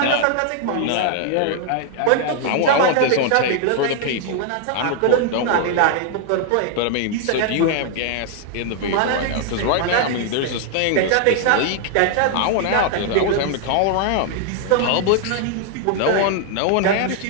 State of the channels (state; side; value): different; both; correlation 0.00